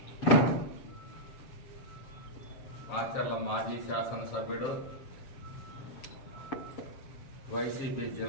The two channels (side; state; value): right; late; 7.3 ms